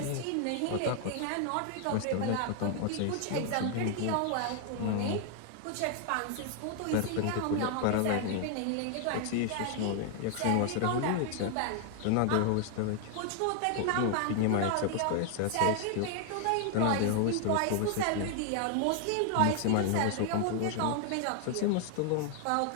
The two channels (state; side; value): different; both; correlation 0.00